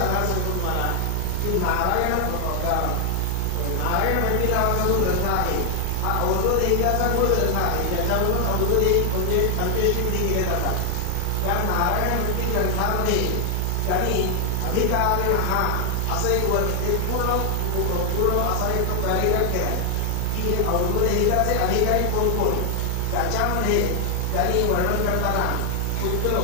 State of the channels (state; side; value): different; both; correlation 0.00